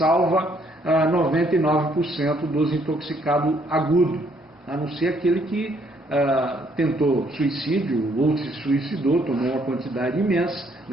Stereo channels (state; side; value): normal; both; correlation 0.68